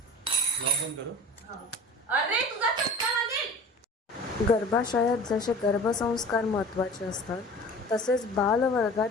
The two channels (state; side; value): normal; both; correlation 0.41